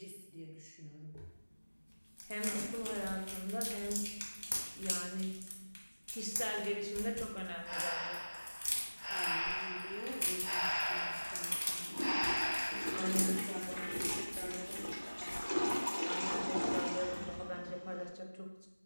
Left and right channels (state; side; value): inverted; both; correlation -1.00